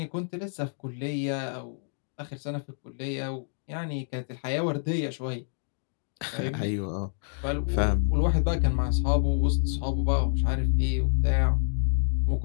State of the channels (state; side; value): silent; right; digital silence